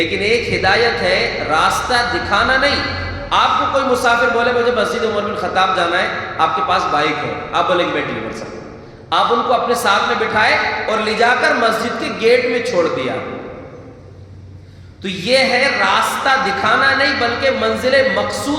ایک ہدایت ہے راستہ دکھانا نہیں. آپ کو کوئی مسافر بولے مجھے مسجد عمر بن خطاب جانا ہے، آپ کے پاس بائک ہے، آپ بولیں گے میں ڈلیور سکتا ہوں، آپ ان کو اپنے ساتھ میں بٹھائے اور لے جا کر مسجد کے گیٹ میں چھوڑ دیا. تو یہ ہے راستہ دکھانا نہیں بلکہ منزل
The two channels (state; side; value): identical; both; correlation 1.00